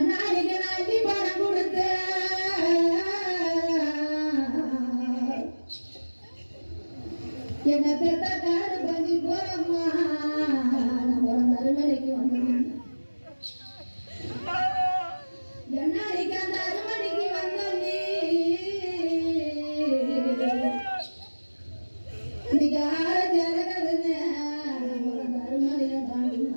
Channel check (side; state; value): both; inverted; correlation -1.00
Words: நாட்டி பணம் கொடுத்து என்ன பெத்த காடு பண்ணி போறம்மா. நான் ஒரு அறுமணிக்கு வந்தேன். எண்ணாடிக்கு அந்த அறுமணிக்கு வந்தோன்னே இன்னைக்கு ஆரஞ்சு இறங்குதுன்னு ஒரு அறுமணியை